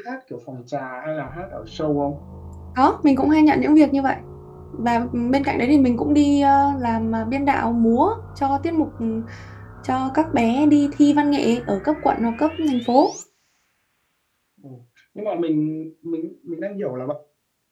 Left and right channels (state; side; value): identical; both; correlation 1.00